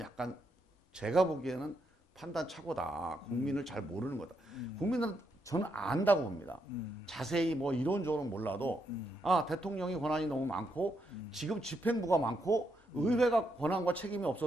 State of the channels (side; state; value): both; normal; correlation 0.79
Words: 제가 보기에는 판단 착오다. 국민을 잘 모르는 거다. 국민은 저는 안다고 봅니다. 자세히 뭐 이론적으로는 몰라도 아, 대통령이 권한이 너무 많고 지금 집행부가 많고 의회가 권한과 책임이